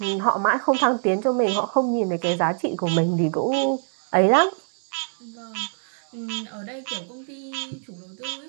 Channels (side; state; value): left; silent; 61 dB below the other